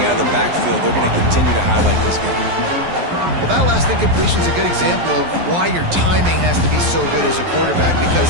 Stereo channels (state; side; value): late; left; 12 ms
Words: out of the backfield. They're going to continue to highlight this guy. Well, that last incompletion is a good example of why your timing has to be so good as a quarterback,